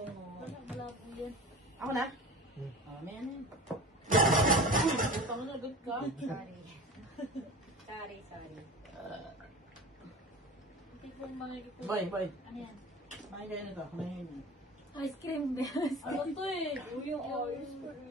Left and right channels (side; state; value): both; normal; correlation 0.36